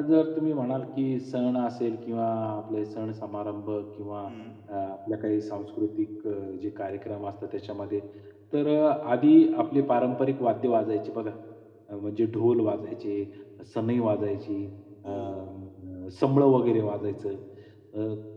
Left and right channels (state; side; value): identical; both; correlation 1.00